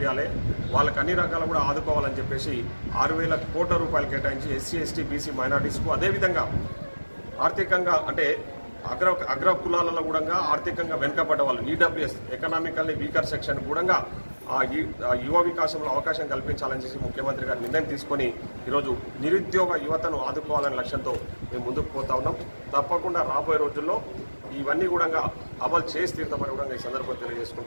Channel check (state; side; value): inverted; both; correlation -1.00